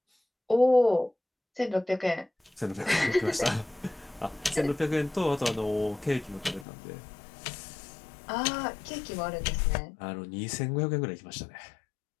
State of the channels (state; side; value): drops out; right; at 6.7 s